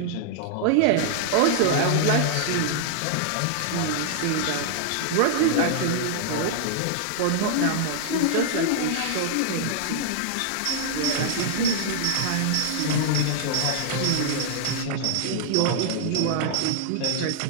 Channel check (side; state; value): both; different; correlation -0.01